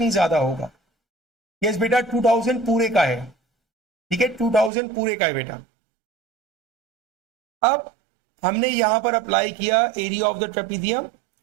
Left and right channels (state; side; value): drops out; left; at 4.7 s